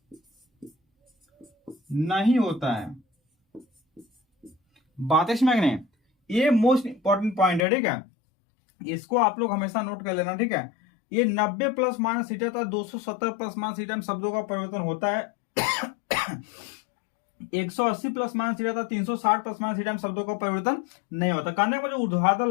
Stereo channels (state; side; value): drops out; right; at 7.7 s